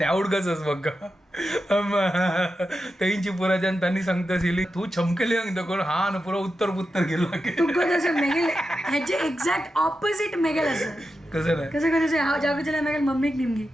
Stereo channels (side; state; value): both; normal; correlation 0.90